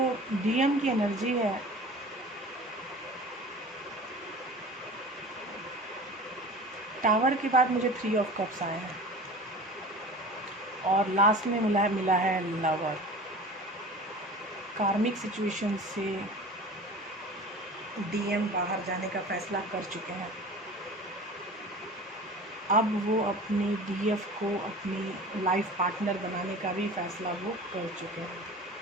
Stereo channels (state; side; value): normal; both; correlation 0.38